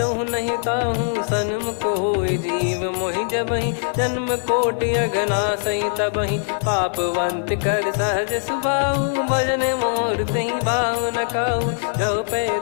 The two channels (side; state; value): right; silent; digital silence